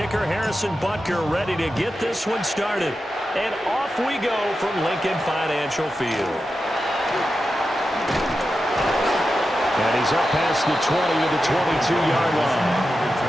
Harrison Butker, ready to get this one started. And off we go from Lincoln Financial Field. And he's up past the 20 to the 22-yard line.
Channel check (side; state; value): both; normal; correlation 0.90